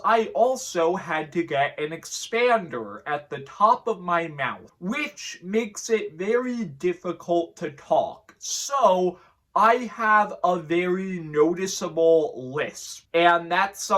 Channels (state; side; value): identical; both; correlation 1.00